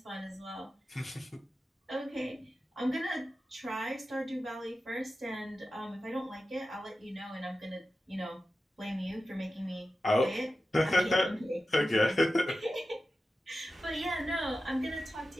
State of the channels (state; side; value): normal; both; correlation 0.93